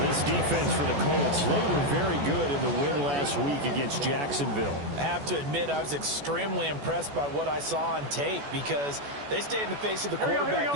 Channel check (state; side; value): late; left; 14 ms